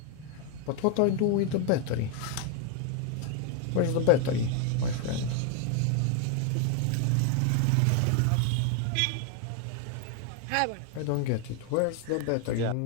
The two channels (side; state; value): both; different; correlation 0.00